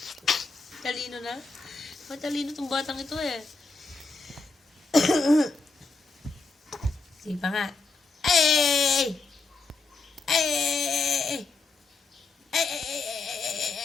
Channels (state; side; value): quieter; right; 3.8 dB